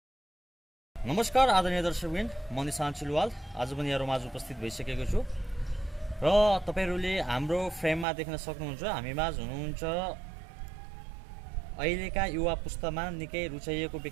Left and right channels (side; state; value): left; drops out; at 8.1 s